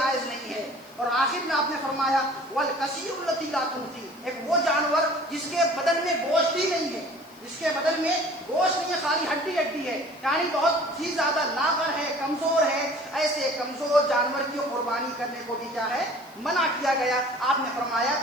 نہیں ہے۔ اور آخر میں آپ نے فرمایا والکثیر التی لا تنفی، ایک وہ جانور جس کے بدن میں گوشت ہی نہیں ہے، خالی ہڈی ہے، یعنی بہت ہی زیادہ لاغر ہے، کمزور ہے، ایسے کمزور جانور کی قربانی کرنے کو بھی کیا ہے؟ منع کیا گیا۔ آپ نے فرمایا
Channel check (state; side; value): noise; left; hiss, 26 dB below the sound